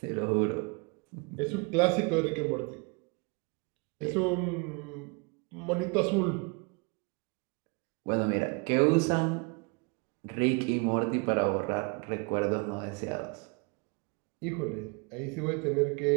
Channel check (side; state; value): left; quieter; 32.1 dB